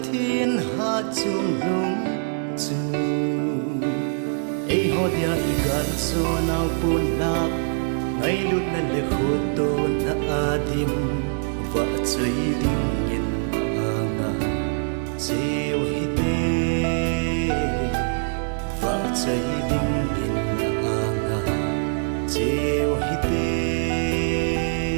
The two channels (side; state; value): left; silent; 63 dB below the other